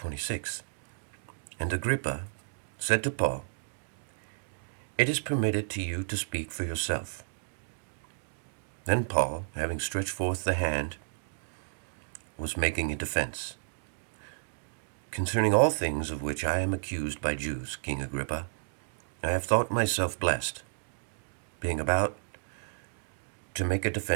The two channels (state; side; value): silent; left; digital silence